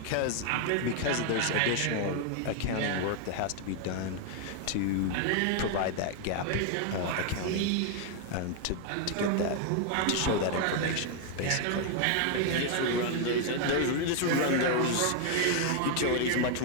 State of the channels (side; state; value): both; different; correlation 0.00